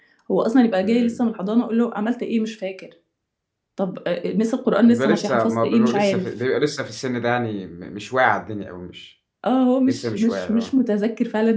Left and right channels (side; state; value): both; identical; correlation 1.00